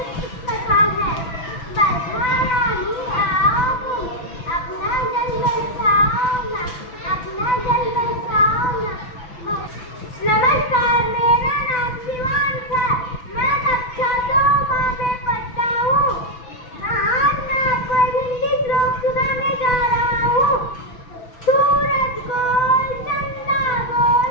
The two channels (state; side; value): late; right; 6.1 ms